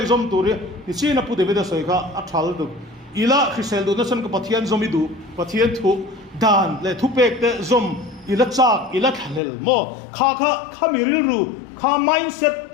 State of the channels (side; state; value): right; drops out; at 9.4 s